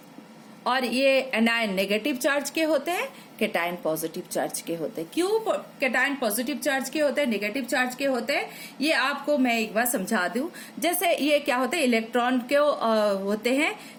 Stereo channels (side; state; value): both; identical; correlation 1.00